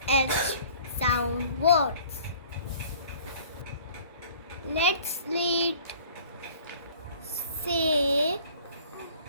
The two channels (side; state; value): both; inverted; correlation -0.52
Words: sound words. Let's read. Say,